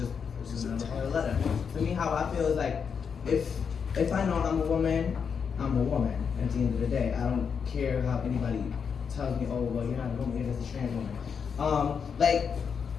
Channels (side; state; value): right; quieter; 6.5 dB